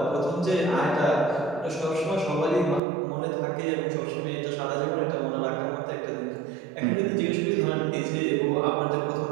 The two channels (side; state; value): left; drops out; at 2.8 s